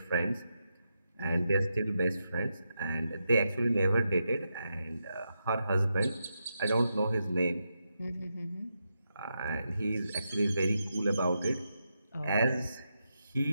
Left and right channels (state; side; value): inverted; both; correlation -0.86